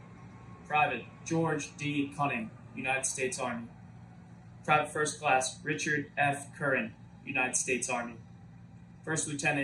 Private George D. Cunning, United States Army. Private First Class Richard F. Curran, United States Army. First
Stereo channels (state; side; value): identical; both; correlation 1.00